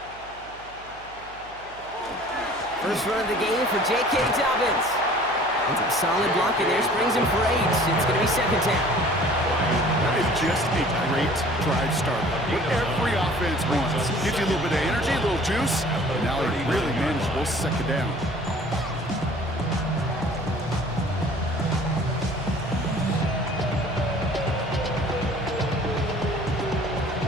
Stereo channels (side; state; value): right; noise; hum, 22 dB below the sound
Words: First run of the game for J.K. Dobbins. And some solid blocking there. Springs him for 8. It's going to be 2nd down. That is just a great drive start. What every offense wants. Gives you a little bit of energy, a little juice, and now he really manageable 2nd down.